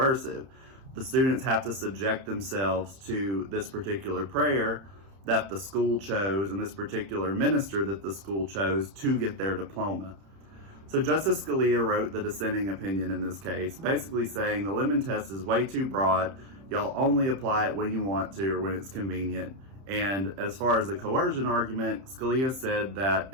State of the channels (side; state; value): left; late; 31 ms